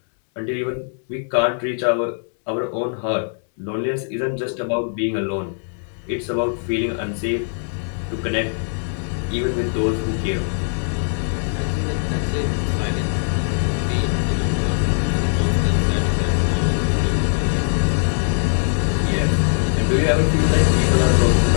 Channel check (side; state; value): right; silent; 65 dB below the other